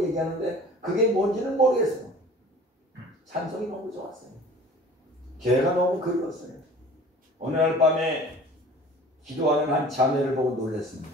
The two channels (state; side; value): normal; both; correlation 0.45